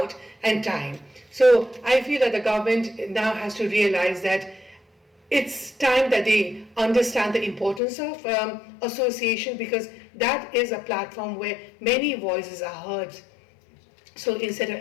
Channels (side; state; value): right; drops out; at 7.8 s